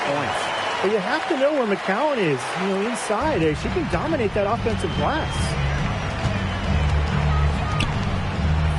points. But you have to know where McCowan is, inside. She can dominate that offensive glass.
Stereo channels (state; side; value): identical; both; correlation 1.00